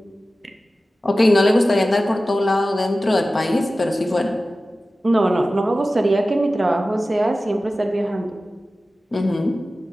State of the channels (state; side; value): normal; both; correlation 0.95